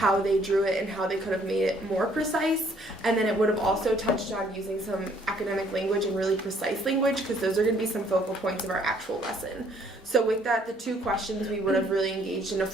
they drew it and how they could have made it more precise. And then it would have also touched on using some academic language and really precise language, because those are going to be some focal points of our actual lesson. So with that, the two questions we would have really engaged in a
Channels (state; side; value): normal; both; correlation 0.63